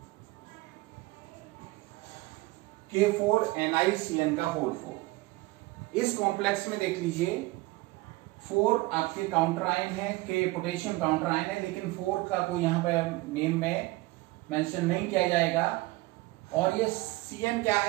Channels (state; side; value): quieter; left; 20.8 dB